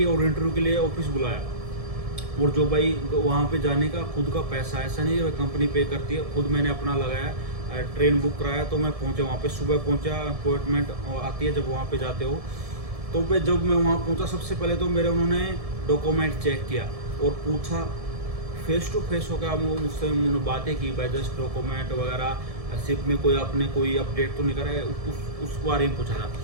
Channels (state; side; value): late; left; 1.7 ms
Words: और इंटरव्यू के लिए ऑफिस बुलाया। और जो भाई वहाँ पे जाने का खुद का पैसा, ऐसा नहीं है कंपनी पे करती है, खुद मैंने अपना लगाया, ट्रेन बुक कराया। तो मैं पहुँचा वहाँ पे, सुबह पहुँचा, अपॉइंटमेंट आती है जब वहाँ पे जाते हो। तो मैं जब मैं वहाँ पहुँचा, सबसे पहले तो उन्होंने डॉक्यूमेंट चेक किया और पूछा, फेस टू फेस होकर मुझसे उन्होंने बातें की भाई, जस्ट डॉक्यूमेंट वगैरह, शिप में आपने कोई अपडेट तो नहीं करा है, उस बारे में पूछा था।